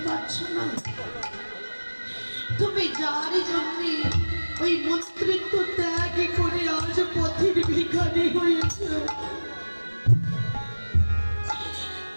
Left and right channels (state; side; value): inverted; both; correlation -1.00